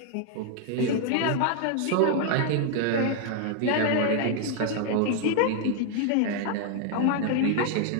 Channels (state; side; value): different; both; correlation 0.00